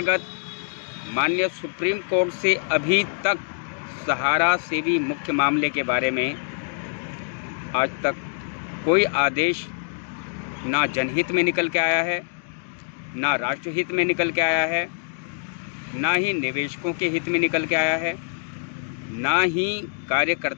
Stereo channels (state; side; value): silent; right; digital silence